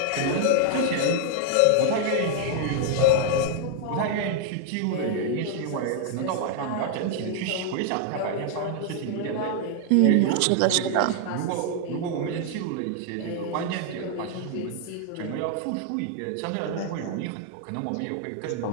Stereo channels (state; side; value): different; both; correlation 0.00